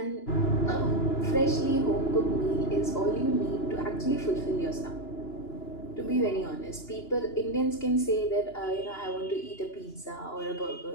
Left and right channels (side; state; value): right; late; 2.9 ms